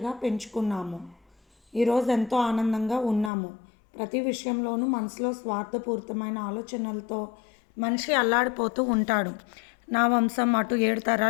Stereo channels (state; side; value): drops out; right; at 3.3 s